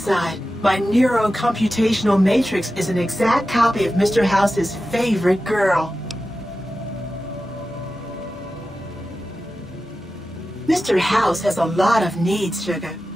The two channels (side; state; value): both; normal; correlation 0.93